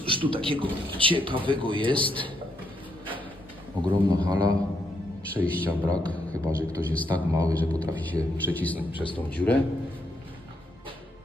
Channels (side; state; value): both; normal; correlation 0.77